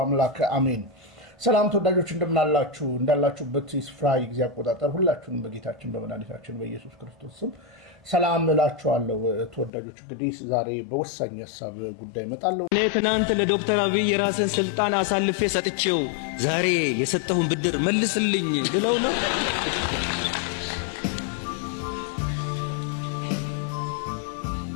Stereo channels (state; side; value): drops out; right; at 9.7 s